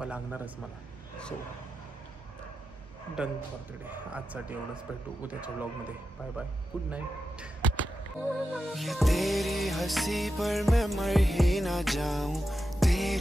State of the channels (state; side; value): normal; both; correlation 0.89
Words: लागणारच मला. So done for the day. आजसाठी एवढंच. भेटू उद्याच्या ब्लॉगमध्ये. Bye bye, good night. ये तेरी हंसी पर मैं मर ही ना जाऊं,